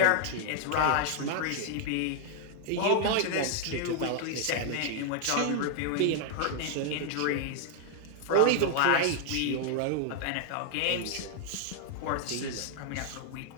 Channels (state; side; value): different; both; correlation 0.00